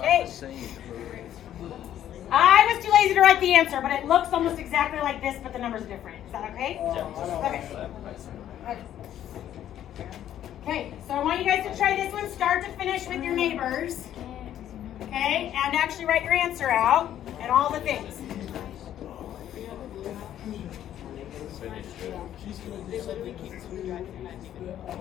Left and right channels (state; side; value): quieter; right; 11.3 dB